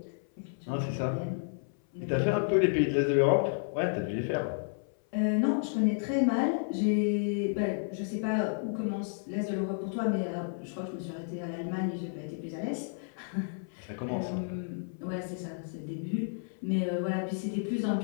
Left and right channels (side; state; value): right; silent; 57 dB below the other